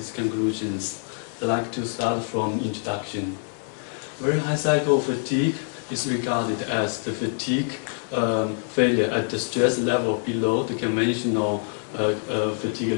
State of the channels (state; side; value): silent; right; 56 dB below the other